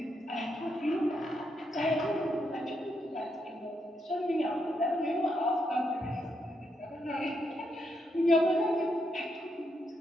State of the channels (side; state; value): both; normal; correlation 0.80